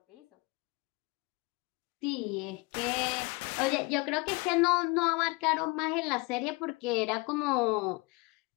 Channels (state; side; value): quieter; right; 26.4 dB